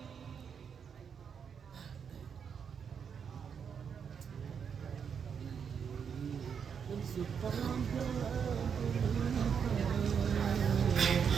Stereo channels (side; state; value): left; quieter; 7.0 dB